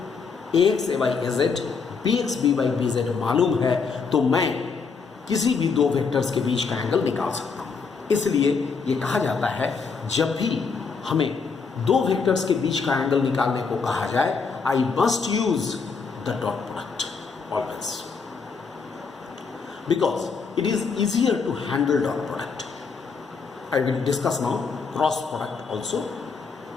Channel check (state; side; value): quieter; right; 5.1 dB